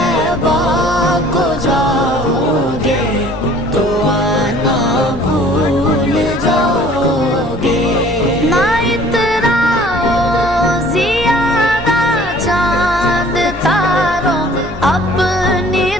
को जाओगे तो आना भूल जाओगे। ना इतराओ ज़ियादा चांद तारों अपनी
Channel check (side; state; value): both; normal; correlation 0.52